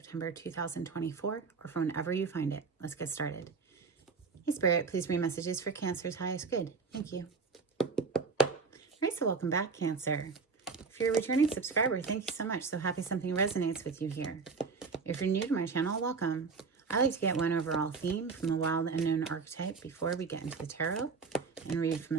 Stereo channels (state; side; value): quieter; left; 5.0 dB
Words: 2024, or from whenever you find it. Let's get started. Hey Spirit, please read messages for Cancer's highest good. Thank you. All right, so welcome back, Cancer. If you're a returning subscriber, thank you so much. So happy something resonates with you here. If you're new to my channel, welcome. I like to get one overall theme from the wild unknown archetype before we get into the tarot and read from